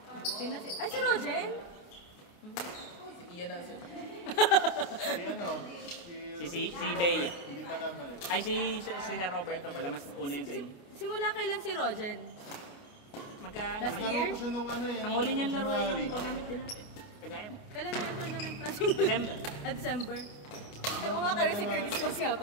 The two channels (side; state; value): right; late; 28 ms